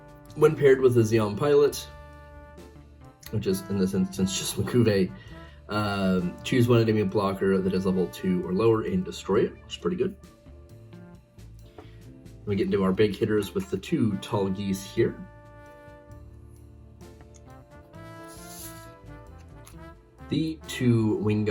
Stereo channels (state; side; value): identical; both; correlation 1.00